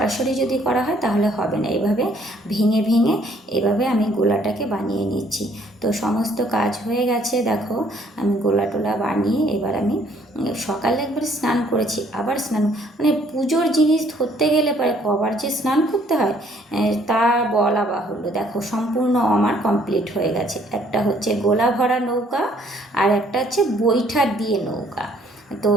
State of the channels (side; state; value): both; normal; correlation 0.63